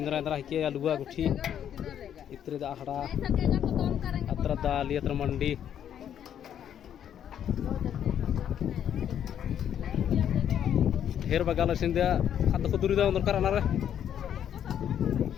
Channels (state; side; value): quieter; right; 9.6 dB